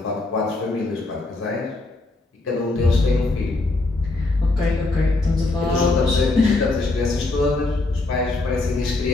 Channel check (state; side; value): quieter; right; 3.1 dB